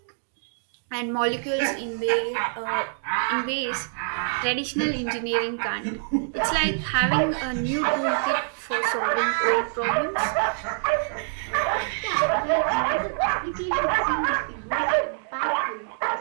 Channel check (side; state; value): left; silent; digital silence